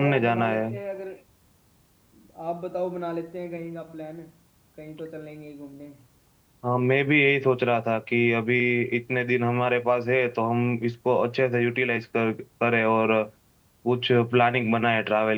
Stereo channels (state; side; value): identical; both; correlation 1.00